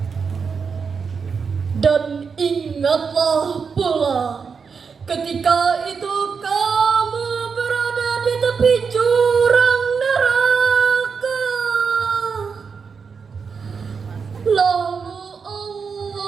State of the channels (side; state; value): left; quieter; 5.7 dB